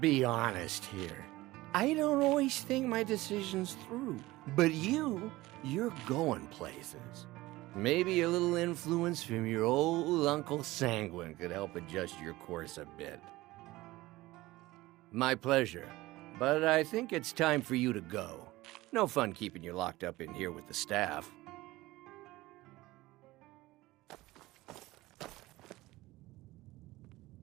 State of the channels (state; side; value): quieter; left; 18.8 dB